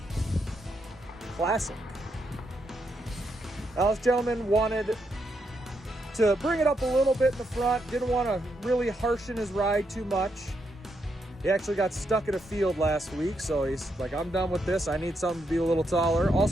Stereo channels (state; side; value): normal; both; correlation 0.80